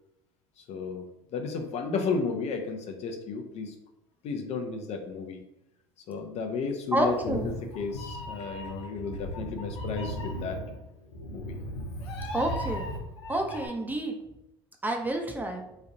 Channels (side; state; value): both; normal; correlation 0.47